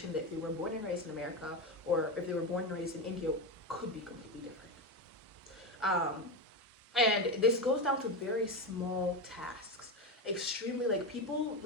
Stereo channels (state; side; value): normal; both; correlation 0.16